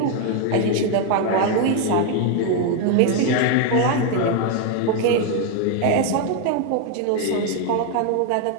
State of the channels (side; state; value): both; different; correlation 0.01